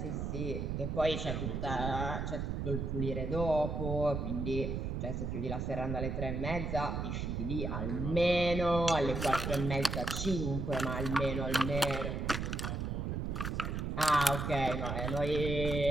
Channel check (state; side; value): noise; right; rumble, 2 dB below the sound